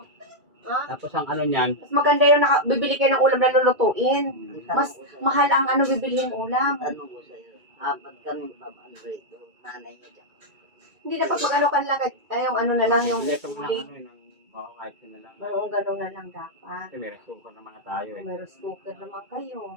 Ha? Tapos ang ano niyan, Mas maganda yung bibili kayo ng ulam na lulutuin. Ang Mas tanong ko sa'yo. mahal ang bibilihin ulam. Tanong ko sa'yo. Apat kami pamandrito. Nanay niya dyan. Hindi dapat mag-ano ka lang. Yung ano na lang, yung leto mo lang huli. ano yun. Kahit yun na lang. Oo, ganun na lang dapat. Kasi may resuko naman na tayo eh. May cooker naman kayo.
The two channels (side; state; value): left; late; 2.3 ms